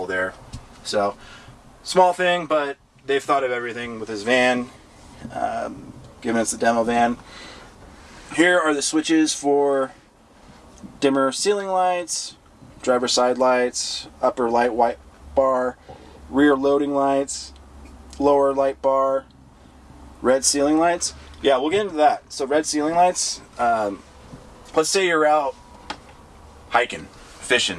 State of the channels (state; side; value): identical; both; correlation 1.00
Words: there. So small thing, but they've thought of everything with this van, given it's the demo van. Here are the switches for dimmer ceiling lights, driver side lights, upper light white bar, rear loading lights, lower light bar, red ceiling lights. Yeah, we'll get into that. So red ceiling lights, let's say you're out hiking,